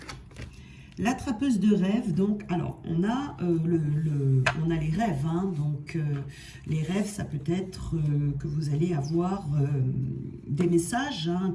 l'attrapeuse de rêves, donc, alors, on a les rêves, hein, donc les rêves, ça peut être que vous allez avoir des messages, hein,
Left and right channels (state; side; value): identical; both; correlation 1.00